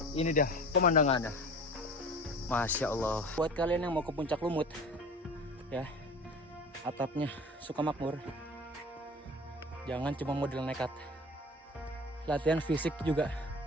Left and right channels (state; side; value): normal; both; correlation 0.39